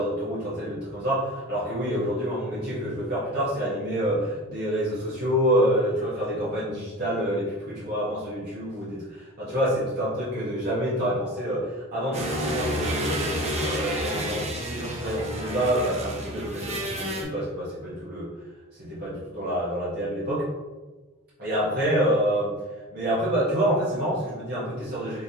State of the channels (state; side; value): normal; both; correlation 0.34